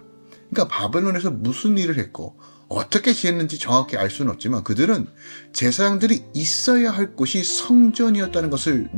그러니까 바벨론에서 무슨 일을 했고 어떻게 지냈는지 정확히 알 수는 없지만 그들은 제사장들이 있어야 할 곳이 성전이었다는 것을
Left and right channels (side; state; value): both; inverted; correlation -1.00